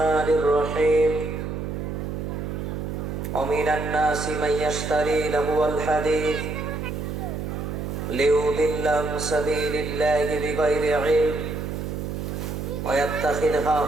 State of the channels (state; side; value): noise; right; hum, 5 dB below the sound